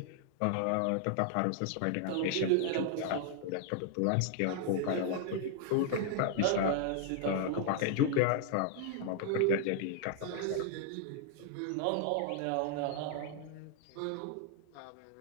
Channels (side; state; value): both; different; correlation 0.00